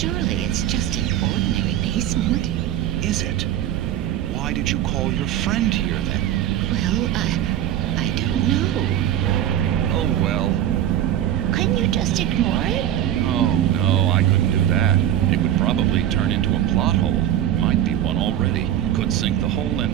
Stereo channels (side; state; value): left; quieter; 11.6 dB